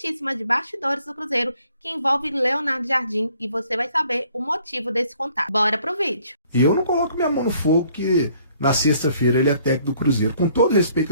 de bastidores do Cruzeiro que envolve Leonardo Jardim e você vai saber o motivo desse contato. Bora pro vídeo! Eu não coloco minha mão no fogo que na sexta-feira ele é técnico do Cruzeiro. Com todo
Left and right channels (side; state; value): both; inverted; correlation -0.61